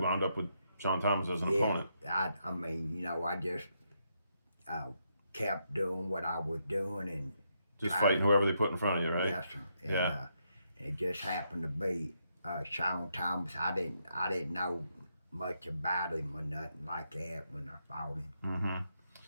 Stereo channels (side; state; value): both; inverted; correlation -0.79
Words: wound up with Sean Thomas as an opponent? I mean, I just kept doing what I was doing and just fighting whoever they put in front of you, right? Yes, sir. And, yeah. It just happened to be Sean Thomas. I didn't know much about him or nothing like that when I fought him. Mm-hmm.